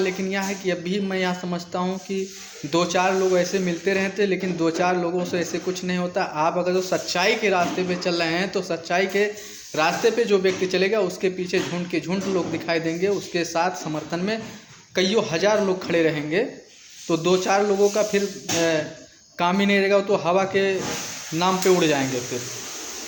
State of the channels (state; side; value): identical; both; correlation 1.00